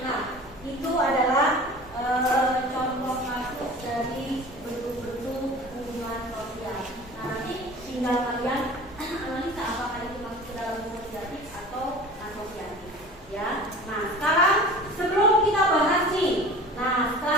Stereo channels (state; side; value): normal; both; correlation 0.39